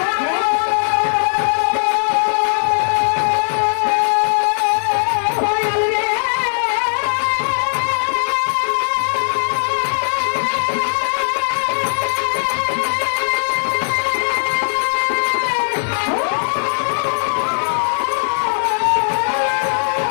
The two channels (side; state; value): right; silent; 67 dB below the other